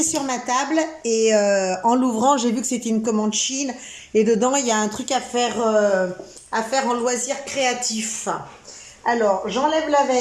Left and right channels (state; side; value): identical; both; correlation 1.00